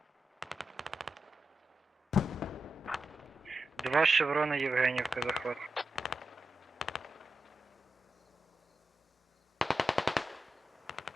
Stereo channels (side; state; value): both; normal; correlation 0.89